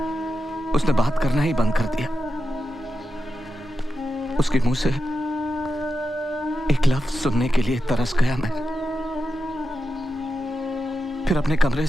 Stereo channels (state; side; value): normal; both; correlation 0.89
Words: उसने बात करना ही बंद कर दिया। उसके मुंह से एक लफ्ज सुनने के लिए तरस गया मैं। फिर अपने कमरे